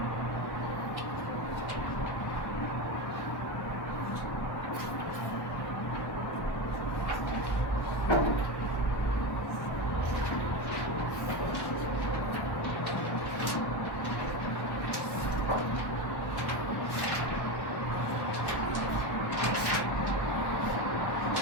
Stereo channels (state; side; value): late; right; 1.1 ms